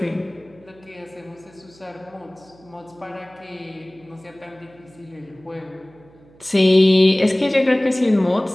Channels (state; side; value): noise; right; hum, 27 dB below the sound